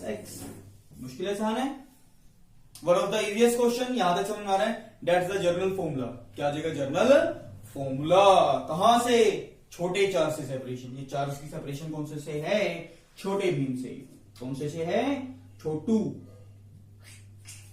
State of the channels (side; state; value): both; identical; correlation 1.00